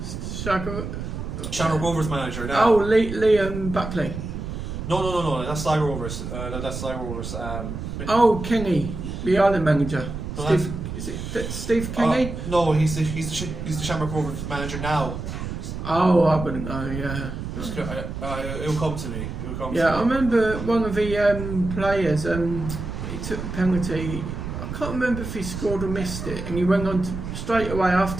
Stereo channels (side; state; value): right; noise; rumble, 6 dB below the sound